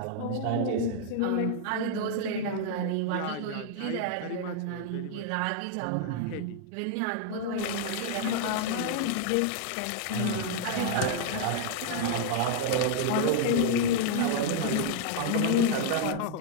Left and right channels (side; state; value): both; different; correlation 0.00